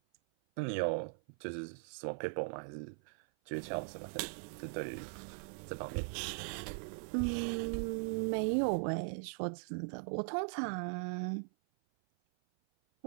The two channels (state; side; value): silent; left; 51 dB below the other